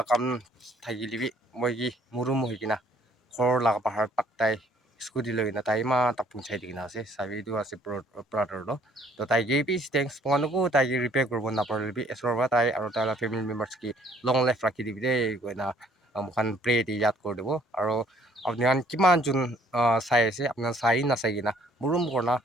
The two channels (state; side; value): normal; both; correlation 0.60